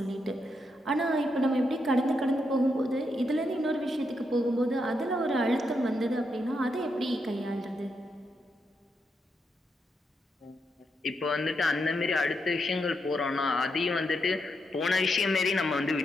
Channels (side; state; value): both; normal; correlation 0.82